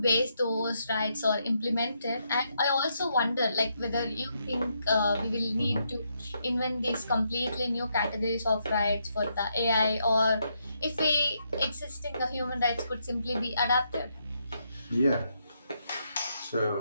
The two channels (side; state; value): both; inverted; correlation -0.79